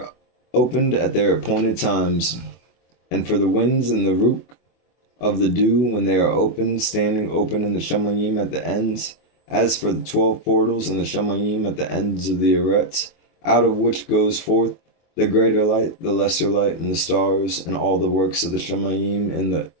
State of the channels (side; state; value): right; late; 24 ms